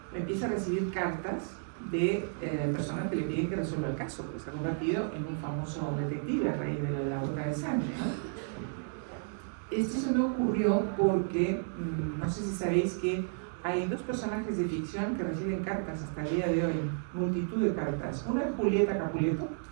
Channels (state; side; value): silent; left; digital silence